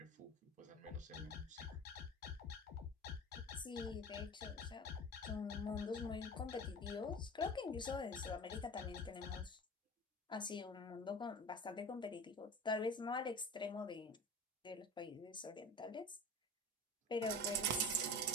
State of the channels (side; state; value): both; normal; correlation 0.35